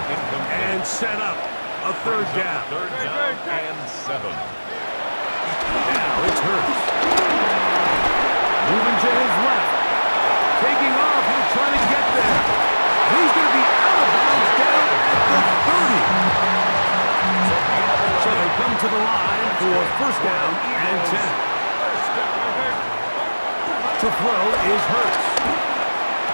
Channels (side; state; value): both; inverted; correlation -1.00